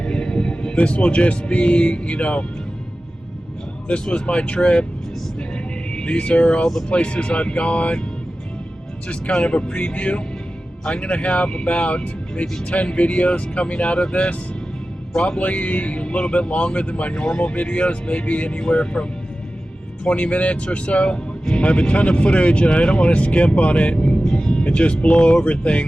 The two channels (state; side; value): normal; both; correlation 0.95